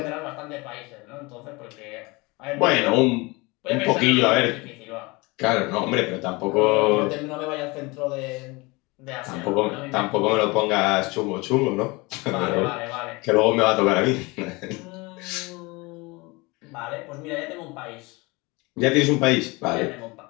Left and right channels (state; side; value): quieter; right; 25.0 dB